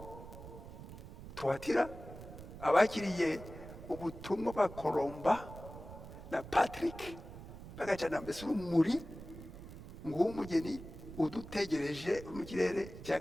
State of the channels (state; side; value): noise; right; rumble, 13 dB below the sound